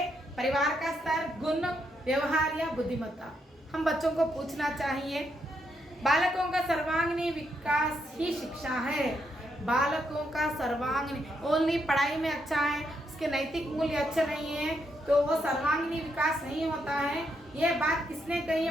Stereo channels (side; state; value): both; normal; correlation 0.78